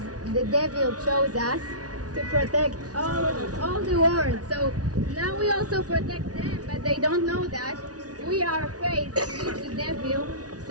the devil chose us to protect all the world. So now we also protect them, but they don't know that. We are afraid to meet the devil,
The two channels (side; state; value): left; late; 0.68 ms